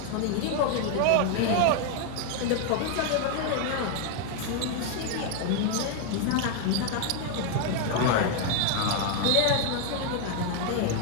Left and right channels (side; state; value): both; different; correlation 0.00